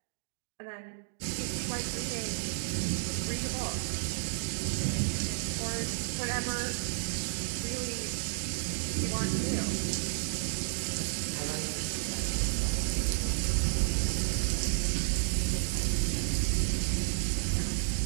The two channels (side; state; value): left; silent; digital silence